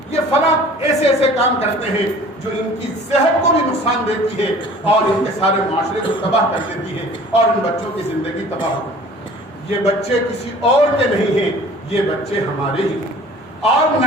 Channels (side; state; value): both; normal; correlation 0.48